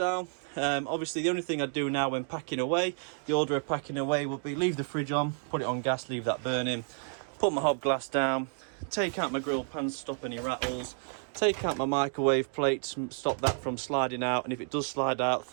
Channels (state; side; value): silent; left; 57 dB below the other